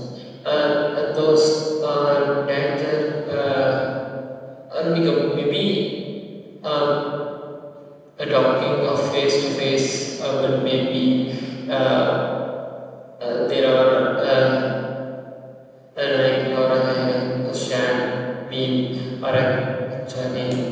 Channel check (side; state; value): both; identical; correlation 1.00